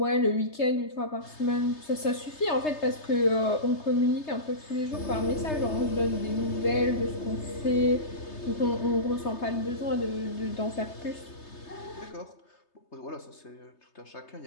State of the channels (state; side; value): late; right; 3.3 ms